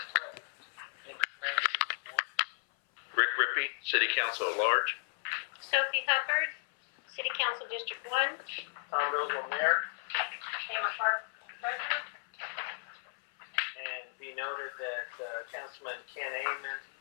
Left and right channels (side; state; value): right; silent; 55 dB below the other